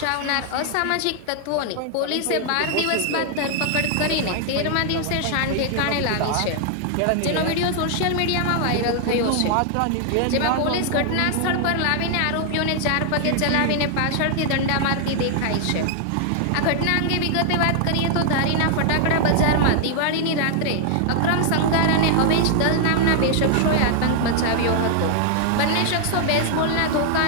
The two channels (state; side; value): different; both; correlation 0.00